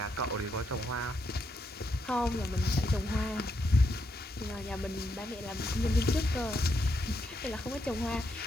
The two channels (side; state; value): both; normal; correlation 0.79